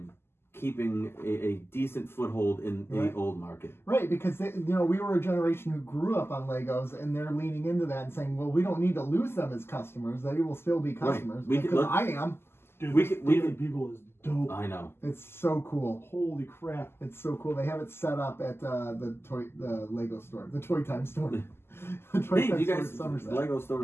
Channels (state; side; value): late; right; 0.12 ms